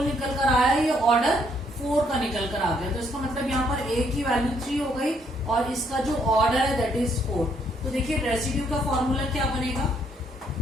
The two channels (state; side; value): normal; both; correlation 0.70